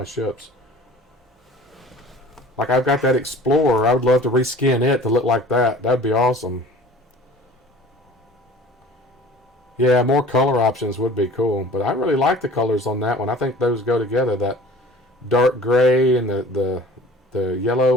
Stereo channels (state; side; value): normal; both; correlation 0.46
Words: ships. Like, I've got that Explorer. I would love to reskin it to look like that. That'd be awesome. Yeah, more color options would be cool. But I really like the colors on that one. I think those go together. That dark gray and the